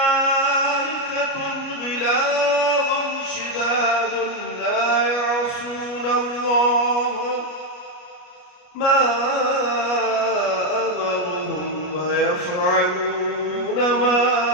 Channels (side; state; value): right; late; 33 ms